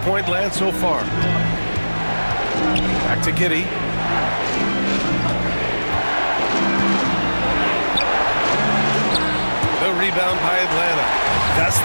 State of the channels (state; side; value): inverted; both; correlation -1.00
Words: land so far. Back to Giddey. The rebound by Atlanta. That's